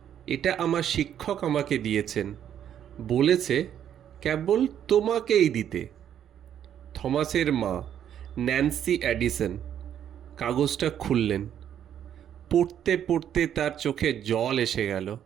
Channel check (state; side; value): quieter; left; 9.8 dB